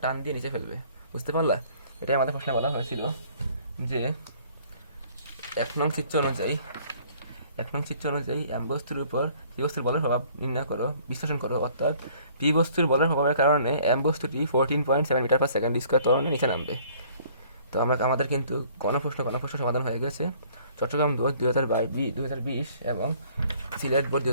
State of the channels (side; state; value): both; inverted; correlation -0.57